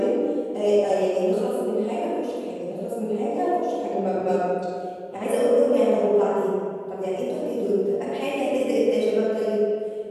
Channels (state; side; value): identical; both; correlation 1.00